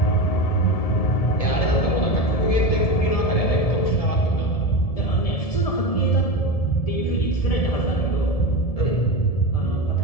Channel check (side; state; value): right; late; 1.7 ms